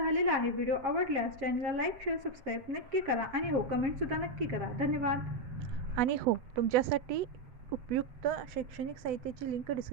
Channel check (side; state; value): left; late; 7.4 ms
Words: आहे. व्हिडिओ आवडल्यास चॅनलला लाईक, शेअर, सबस्क्राईब नक्की करा आणि हो कमेंटसुद्धा नक्की करा. धन्यवाद. आणि हो तुमच्यासाठी उपयुक्त शैक्षणिक साहित्याची लिंक